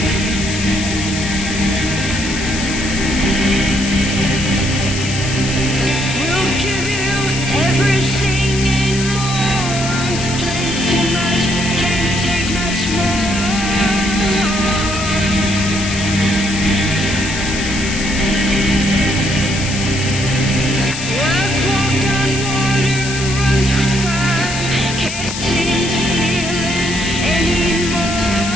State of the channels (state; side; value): noise; left; hiss, 7 dB below the sound